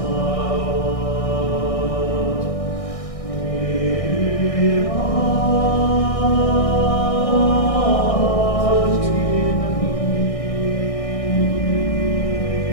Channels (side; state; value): right; late; 1.6 ms